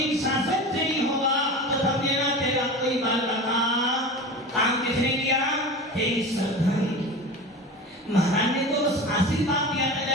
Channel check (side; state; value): both; normal; correlation 0.31